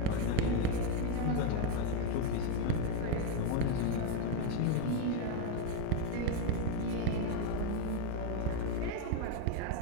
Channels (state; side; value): different; both; correlation 0.02